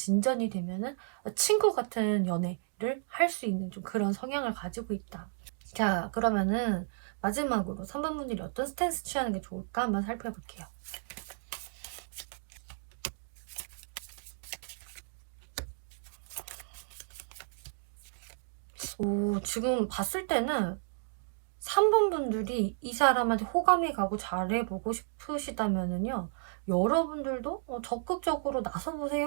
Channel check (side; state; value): left; silent; digital silence